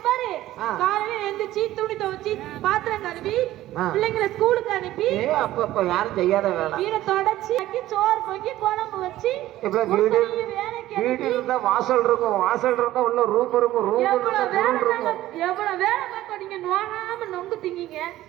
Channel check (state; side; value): quieter; left; 14.9 dB